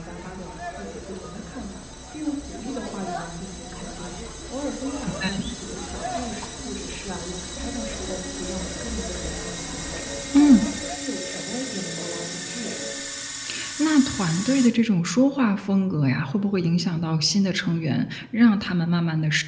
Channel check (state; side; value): identical; both; correlation 1.00